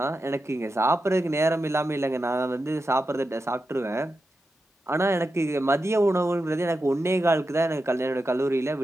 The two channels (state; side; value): normal; both; correlation 0.89